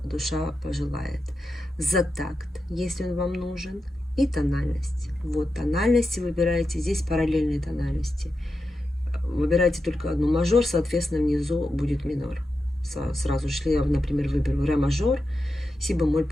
душа пожелает. За такт, если он вам нужен. И тональность. Вот тональности выбираете. Здесь параллельные тональности. Выбирайте только одну мажор, соответственно, внизу будет минор. Сразу же, если я, например, выберу ре мажор, си бемоль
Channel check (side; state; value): both; normal; correlation 0.89